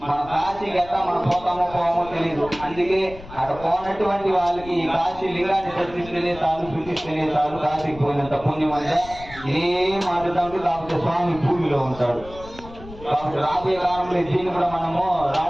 మన కాశీకి ఎట్లా మనం పోతామో తెలియదు. అందుకే అక్కడ పోనటువంటి వాళ్ళకి ఈ కాశీ లింగాన్ని దర్శిస్తేనే చాలు, సూచిస్తేనే చాలు, కాశీకి పోయినంత పుణ్యం అంటే ఏం మాట్లాడుతూ. కాకపోతే స్వామి భూమిలో ఉంటాడు. కాబట్టి రాబోయే కాలంలో దీన్ని కూడా మనము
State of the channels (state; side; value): noise; left; rumble, 17 dB below the sound